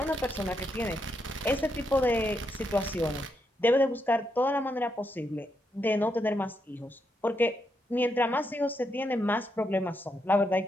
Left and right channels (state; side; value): normal; both; correlation 0.81